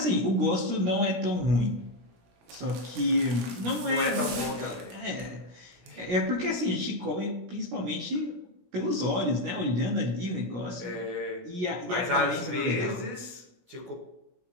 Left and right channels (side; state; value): left; late; 16 ms